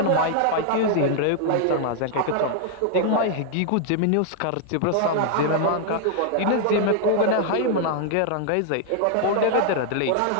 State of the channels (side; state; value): both; different; correlation 0.00